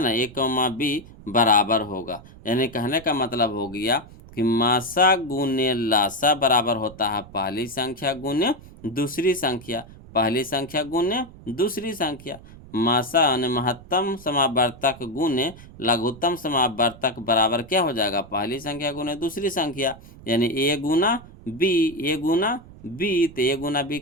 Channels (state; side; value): noise; right; rumble, 19 dB below the sound